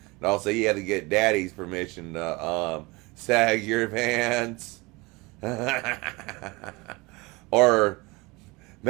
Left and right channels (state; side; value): quieter; left; 24.7 dB